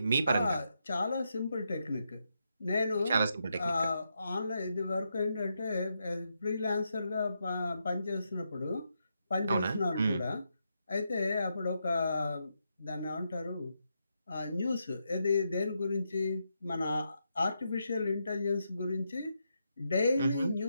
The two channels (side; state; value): both; inverted; correlation -0.83